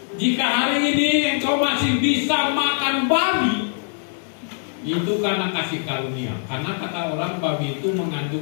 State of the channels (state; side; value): silent; right; digital silence